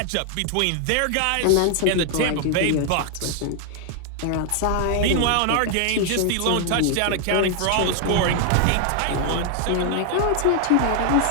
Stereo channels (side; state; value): both; different; correlation 0.00